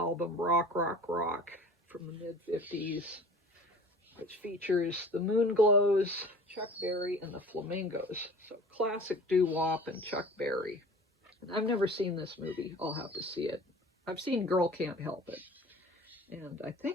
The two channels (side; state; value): both; normal; correlation 0.43